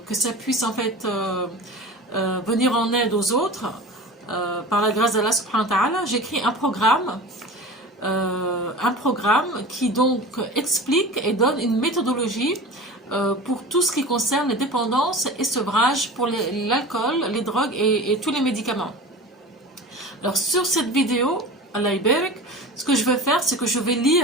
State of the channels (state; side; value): normal; both; correlation 0.35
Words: que ça puisse en fait venir en aide aux autres, par la grâce d'Allah subhanahu wa ta'ala, j'ai écrit un programme qui donc explique et donne une méthodologie pour tout ce qui concerne les dépendances et sevrage pour l'alcool, les drogues et tous les médicaments. Alors sur cette vidéo, Allah Ibarak, ce que je vais faire, c'est que je vais